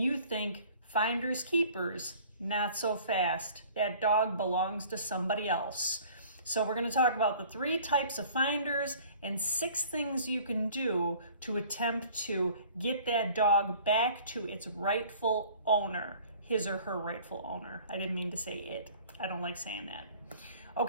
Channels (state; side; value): inverted; both; correlation -0.50